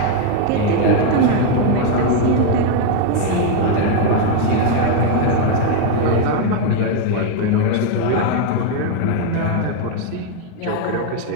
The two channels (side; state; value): both; different; correlation 0.01